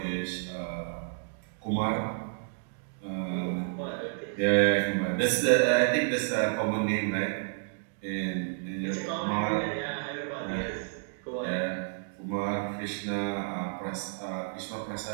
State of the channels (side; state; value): left; silent; digital silence